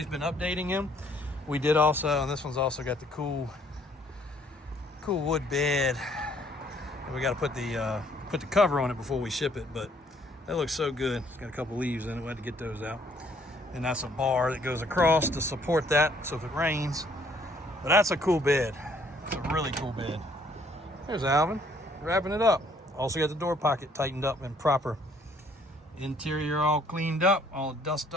been updating him. We did also, and this one's also got the cool wood bed. And we got to put the cover on it before we ship it, but that looks so good. It's got a couple leaves in it. We had to get those out. And that's a bar that goes across to support that, so if it rains. But that's a cool bed. It's a really cool bed. There's Alvin, wrapping it up. Also got the door pocket tightened up and proper. Interior all cleaned up, all the dust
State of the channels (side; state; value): both; normal; correlation 0.63